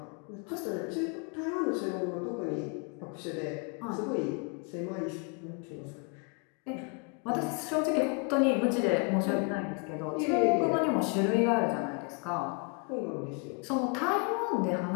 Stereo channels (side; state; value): right; quieter; 34.8 dB